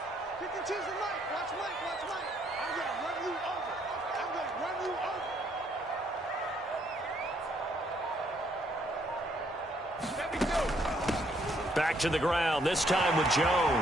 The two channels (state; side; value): normal; both; correlation 0.69